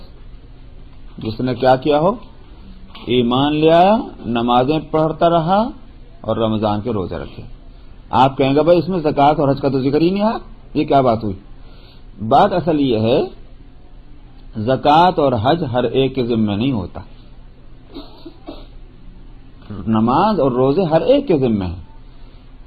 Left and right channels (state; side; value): identical; both; correlation 1.00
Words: جس نے کیا کیا ہو؟ ایمان لے آیا، نمازیں پڑھتا رہا اور رمضان کے روزے رکھے۔ آپ کہیں گے بھائی اس میں زکوٰۃ اور حج کا تو ذکر ہی نہیں آیا، یہ کیا بات ہوئی؟ بات اصل یہ ہے، زکوٰۃ اور حج ہر ایک کے ذمہ نہیں ہوتا، نماز اور روزے ہر ایک کے ذمہ ہیں۔